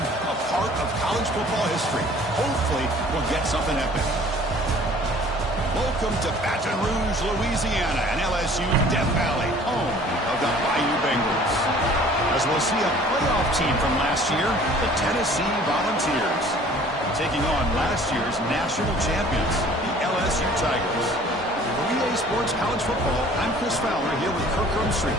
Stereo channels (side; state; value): both; normal; correlation 0.51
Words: a part of college football history. Hopefully, we'll get something epic. Welcome to Baton Rouge, Louisiana, and LSU's Death Valley, home of the Bayou Bengals. As we'll see a playoff team from last year, the Tennessee Volunteers, taking on last year's national champions, the LSU Tigers. For EA Sports College Football, I'm Chris Fowler here with Kirk Rumstreet.